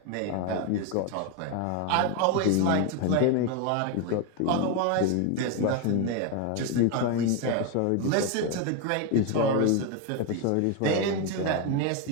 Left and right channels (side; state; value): both; different; correlation 0.02